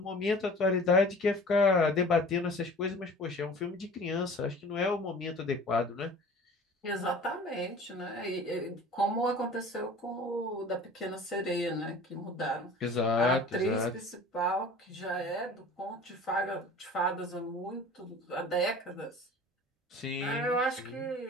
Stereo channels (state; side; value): normal; both; correlation 0.43